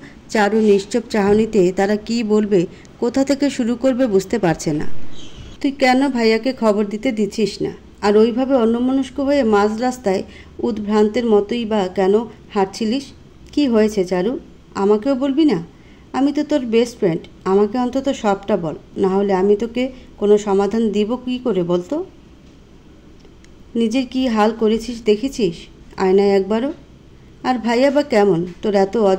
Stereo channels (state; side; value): identical; both; correlation 1.00